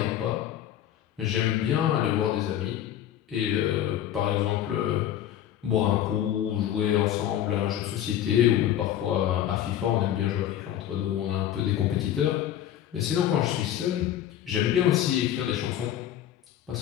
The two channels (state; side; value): quieter; right; 11.3 dB